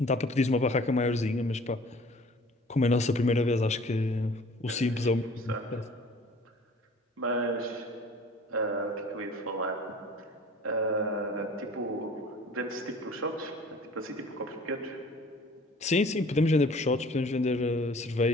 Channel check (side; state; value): both; normal; correlation 0.49